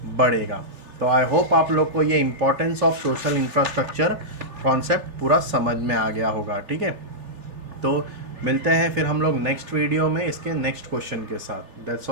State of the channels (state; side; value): late; left; 3.4 ms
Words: बढ़ेगा। तो आई होप आप लोग को ये importance of social infrastructure concept पूरा समझ में आ गया होगा। ठीक है, तो मिलते हैं फिर हम लोग नेक्स्ट वीडियो में इसके नेक्स्ट क्वेश्चन के साथ। That's